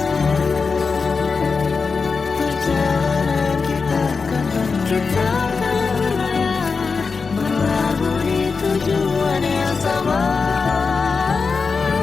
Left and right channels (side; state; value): right; quieter; 4.8 dB